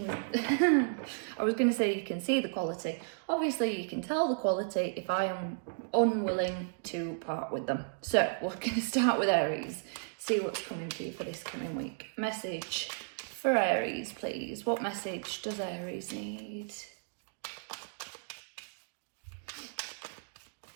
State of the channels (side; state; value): left; silent; digital silence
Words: I was going to say you can see the quality. Obviously you can tell the quality if I am unwilling to part with them. So we're going to start with Aries, see what's coming to you for this coming week. Message for Aries, please. What message does Aries need?